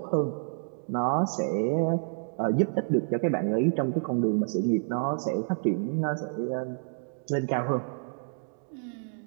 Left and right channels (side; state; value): left; silent; digital silence